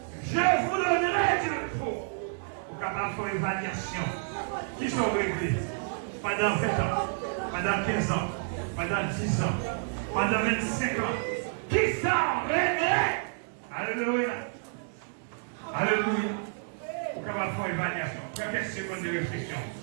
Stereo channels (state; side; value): silent; left; digital silence